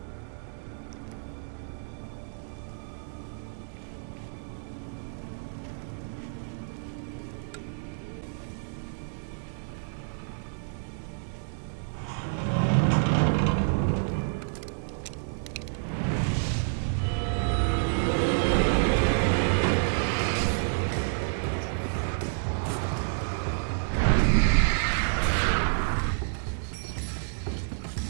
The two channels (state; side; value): silent; left; digital silence